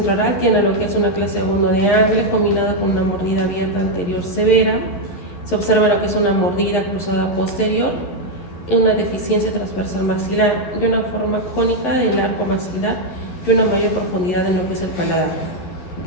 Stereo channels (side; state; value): right; late; 11 ms